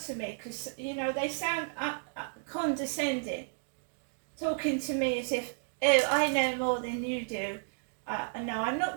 to me because, you know, they sound condescending, talking to me as if, oh, I know more than you do. No, I'm not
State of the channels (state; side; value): silent; left; digital silence